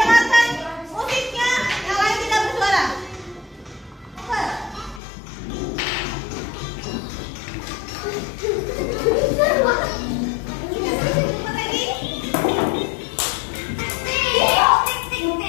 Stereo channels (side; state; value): right; drops out; at 5.0 s